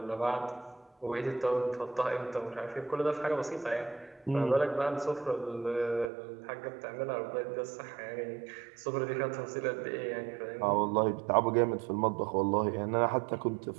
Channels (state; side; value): drops out; left; at 6.1 s